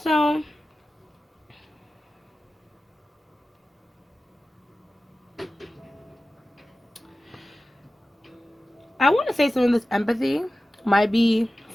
I want to say some of this empathy might be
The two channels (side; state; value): both; normal; correlation 0.95